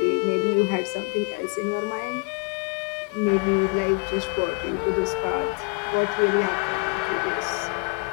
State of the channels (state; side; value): quieter; right; 31.5 dB